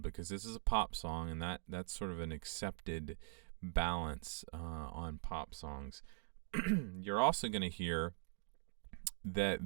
because this is a pop song, and that's sort of an accepted balance on pop songs. You're also going to hear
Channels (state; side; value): silent; left; digital silence